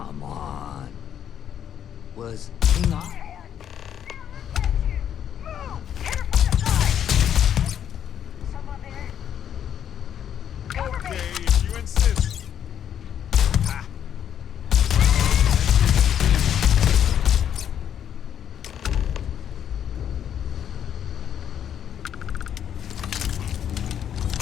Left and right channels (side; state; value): right; quieter; 9.4 dB